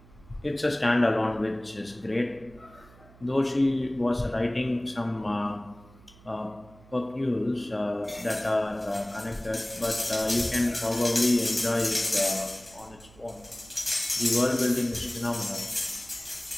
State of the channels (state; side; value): noise; right; hum, 24 dB below the sound